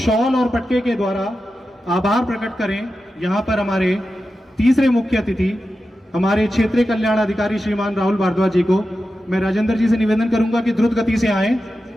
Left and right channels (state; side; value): normal; both; correlation 0.91